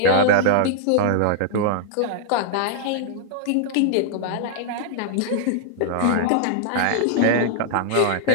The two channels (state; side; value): different; both; correlation -0.01